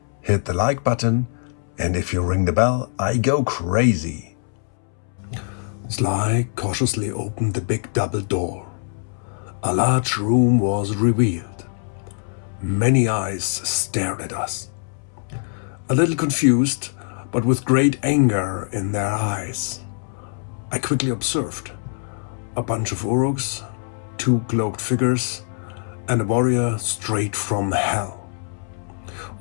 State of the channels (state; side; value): silent; right; 64 dB below the other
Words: hit the like button, and if you ring the bell, I go crazy. Sly cautiously opened the big double door. A large room was revealed. Many eyes stared at us. A little confused, but with great anger in their eyes. I quickly observed a bunch of Uruks, two cloaked figures, and a warrior straight from hell.